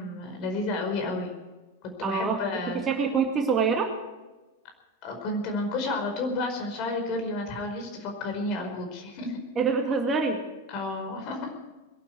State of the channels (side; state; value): both; normal; correlation 0.28